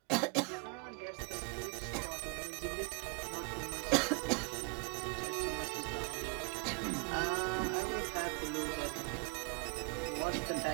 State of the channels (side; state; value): left; quieter; 33.2 dB